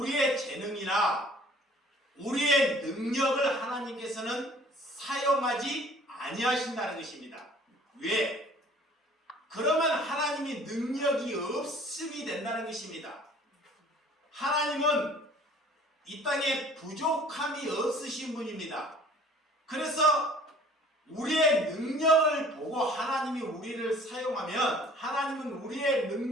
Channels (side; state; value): both; normal; correlation 0.52